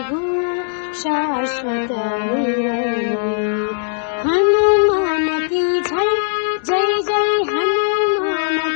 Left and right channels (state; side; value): silent; right; digital silence